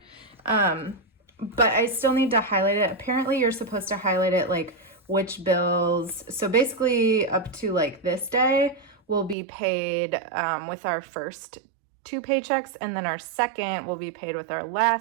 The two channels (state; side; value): drops out; left; at 9.3 s